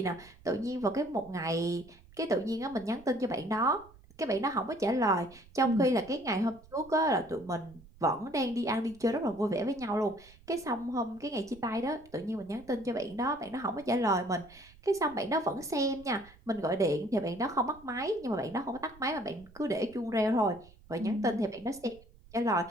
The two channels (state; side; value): noise; right; rumble, 24 dB below the sound